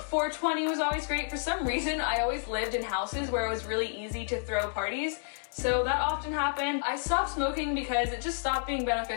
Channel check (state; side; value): silent; right; digital silence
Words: was always great. For some reason, I always lived in houses where it was really easy to throw parties, so that often happened. I stopped smoking because it just stopped being